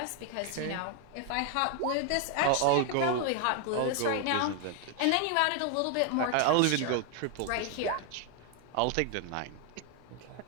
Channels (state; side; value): different; both; correlation 0.00